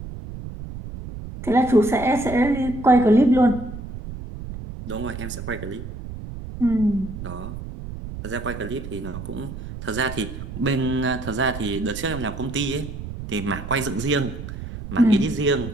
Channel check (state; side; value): noise; right; rumble, 10 dB below the sound